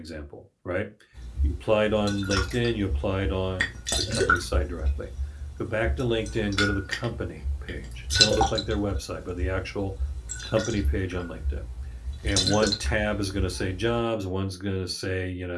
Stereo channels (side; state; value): both; identical; correlation 1.00